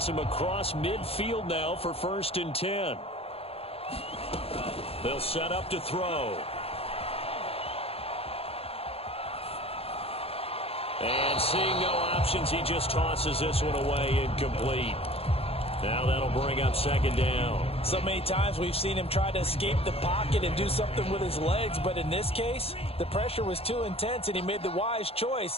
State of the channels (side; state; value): right; late; 0.28 ms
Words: him across midfield now for 1st and 10. They'll set up to throw. And seeing no options, he just tosses this one away incomplete. Now that'll bring up 2nd down. So many times we've seen him try to escape the pocket and do something with his legs, but in this case, the pressure was too intense and he made the wise